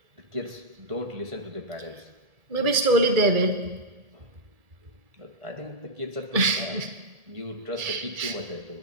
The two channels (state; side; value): late; left; 1.7 ms